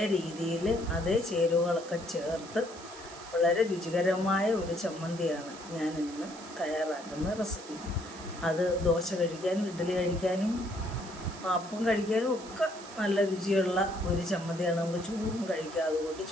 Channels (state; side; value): noise; right; hiss, 17 dB below the sound